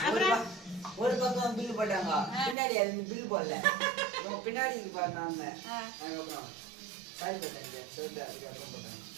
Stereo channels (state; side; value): drops out; left; at 2.6 s